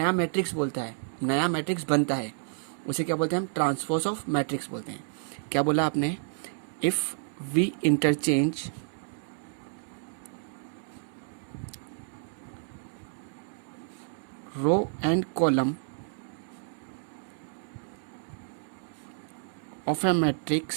मैट्रिक्स बोलता है, नया मैट्रिक्स बनता है, उसे क्या बोलते हैं, हम ट्रांसपोज ऑफ मैट्रिक्स बोलते हैं। क्या बोला आपने, if we interchange row and column of a matrix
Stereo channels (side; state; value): left; silent; 58 dB below the other